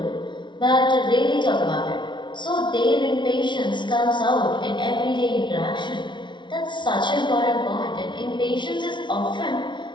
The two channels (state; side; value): late; right; 0.23 ms